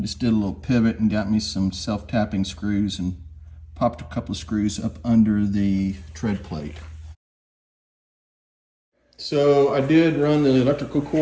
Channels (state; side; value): identical; both; correlation 1.00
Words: did a little pivot and got me some self-tapping screws and popped a couple of screws up under the tread plate. So I did run the electrical